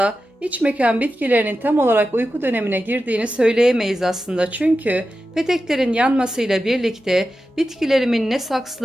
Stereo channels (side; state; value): both; normal; correlation 0.92